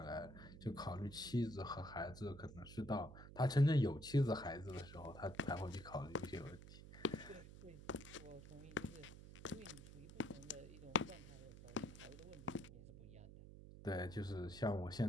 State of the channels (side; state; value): right; noise; hum, 14 dB below the sound